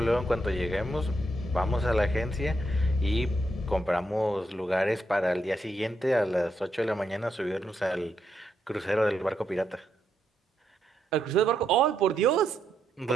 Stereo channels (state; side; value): normal; both; correlation 0.80